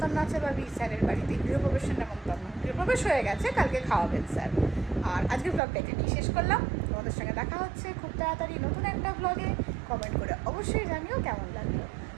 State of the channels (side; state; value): left; drops out; at 5.6 s